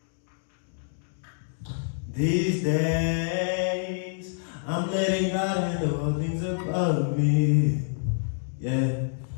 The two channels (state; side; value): silent; right; digital silence